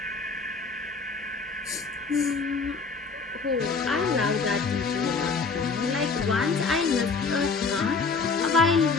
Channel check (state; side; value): quieter; right; 4.6 dB